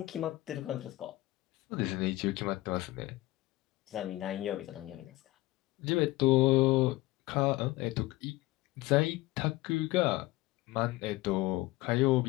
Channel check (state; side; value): quieter; right; 18.9 dB